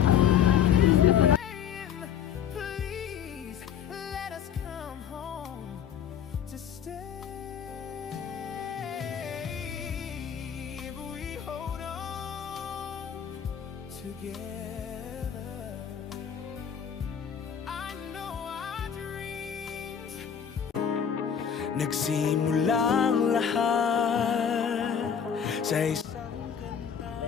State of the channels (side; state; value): right; quieter; 8.2 dB